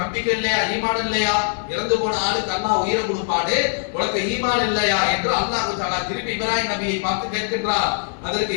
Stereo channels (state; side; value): silent; right; 64 dB below the other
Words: நம்பிக்கை இல்லையா, ஈமான் இல்லையா, இறந்து போன ஆளுக்கு அல்லாஹ் உயிரை கொடுப்பாடு, உனக்கு ஈமான் இல்லையா என்று அல்லாஹ் தஆலா திருப்பி இப்ராஹிம் நபியை பார்த்து கேட்கின்றார். அதற்கு